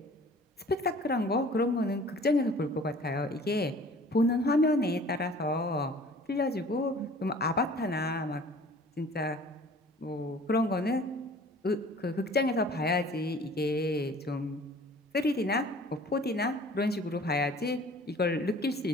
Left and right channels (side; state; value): both; normal; correlation 0.49